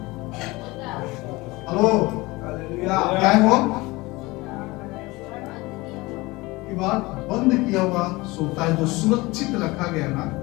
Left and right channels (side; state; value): right; quieter; 22.0 dB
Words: हेलो, क्या है वो? दीवार बंद किया हुआ सोता है, जो सुरक्षित रखा गया ना,